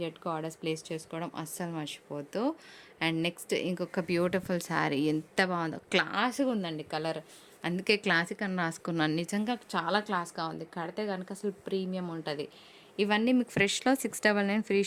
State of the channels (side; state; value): both; identical; correlation 1.00